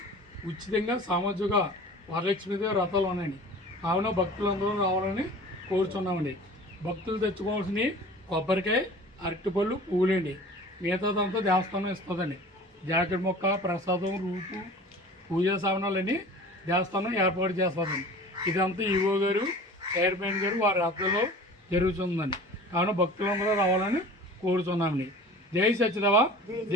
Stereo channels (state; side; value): normal; both; correlation 0.41